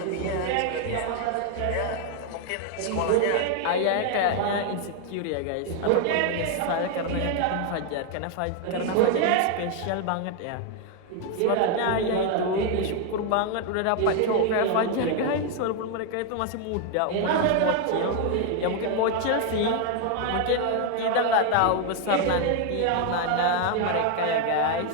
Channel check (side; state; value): both; different; correlation 0.01